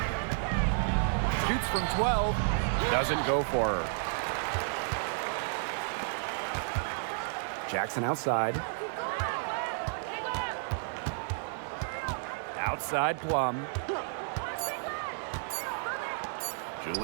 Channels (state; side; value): silent; left; digital silence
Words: Shoots from 12. Doesn't go for her. Jackson outside. Outside Plum.